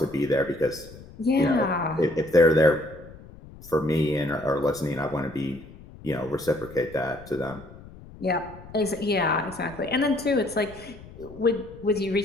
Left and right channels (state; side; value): noise; left; rumble, 18 dB below the sound